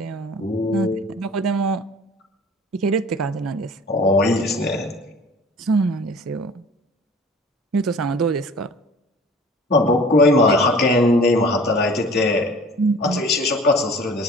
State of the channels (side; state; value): both; normal; correlation 0.46